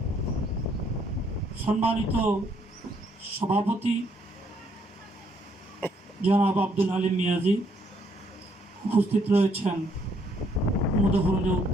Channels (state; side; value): normal; both; correlation 0.69